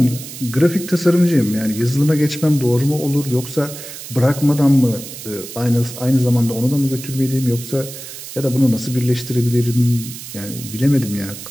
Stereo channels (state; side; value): noise; right; hiss, 12 dB below the sound